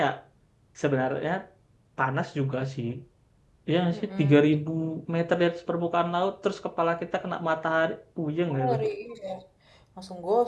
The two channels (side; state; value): both; identical; correlation 1.00